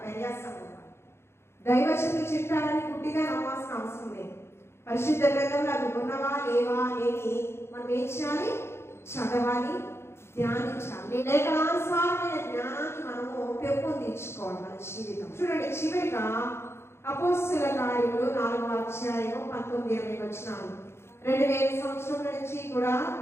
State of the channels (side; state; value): right; late; 0.12 ms